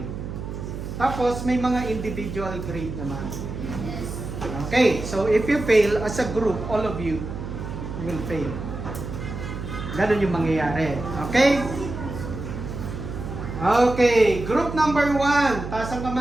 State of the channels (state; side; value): noise; right; hum, 7 dB below the sound